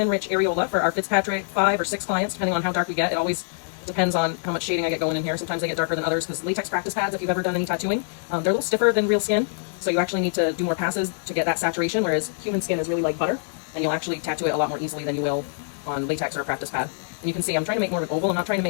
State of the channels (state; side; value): silent; right; 59 dB below the other